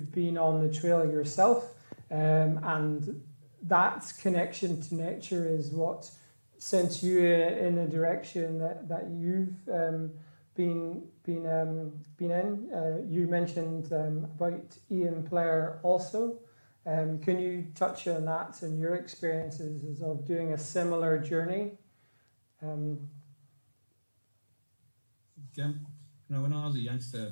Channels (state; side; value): inverted; both; correlation -1.00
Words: been on the trail yourself, and that connection to nature is what sent you in a direction that you've been in. You mentioned about Ian Blair also. Can you touch on that and your experiences of doing a similar journey? When I was a youngster,